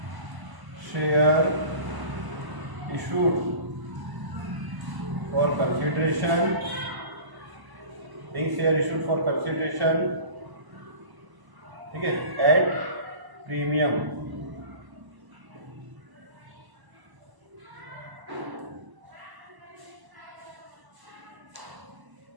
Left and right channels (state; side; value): late; left; 1.0 ms